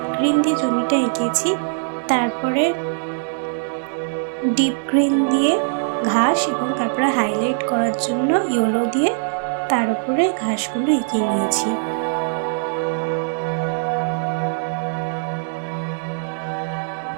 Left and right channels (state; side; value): silent; left; digital silence